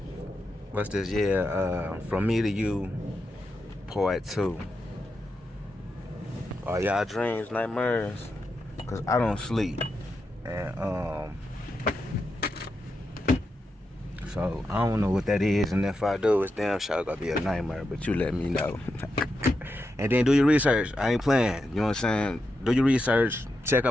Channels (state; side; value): normal; both; correlation 0.87